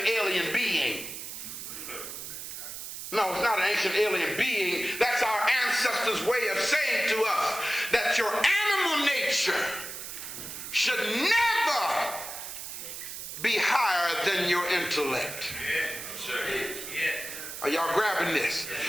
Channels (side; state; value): right; noise; hiss, 9 dB below the sound